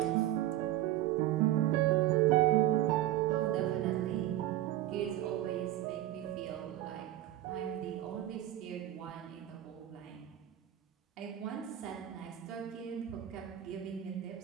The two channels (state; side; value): quieter; left; 13.6 dB